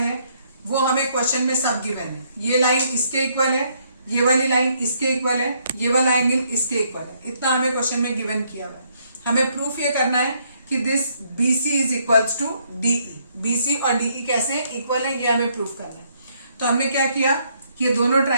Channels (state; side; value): inverted; both; correlation -0.70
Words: वो हमें क्वेश्चन में सब गिवन है। ये लाइन इसके इक्वल है, ये वाली लाइन इसके इक्वल है, ये वाला एंगल इसके इक्वल है। इतना हमें क्वेश्चन में गिवन किया हुआ है। हमें प्रूफ ये करना है कि this BC is equals to DE। BC और DE कैसे इक्वल है, ये हमें प्रूफ करना है। तो हमने क्या किया कि ये दोनों